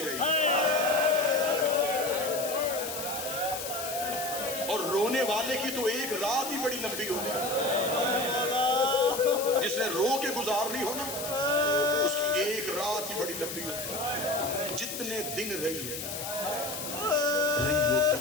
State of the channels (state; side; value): noise; left; hiss, 7 dB below the sound